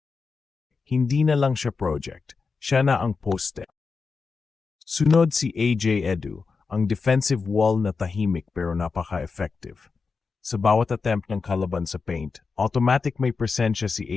hindi na lang siya project, siya na ang poste. Sunod si AJ Edu, ang defensive wall na tahimik pero napaka-effective. Sa bawat attempt ng kalaban sa paint, automatic may presensya si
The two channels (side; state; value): right; quieter; 4.8 dB